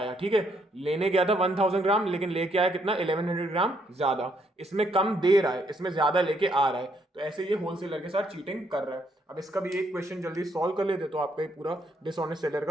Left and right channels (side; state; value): both; normal; correlation 0.72